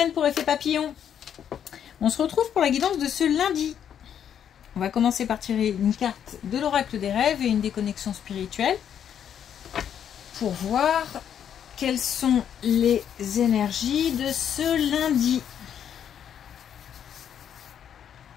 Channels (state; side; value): quieter; right; 9.0 dB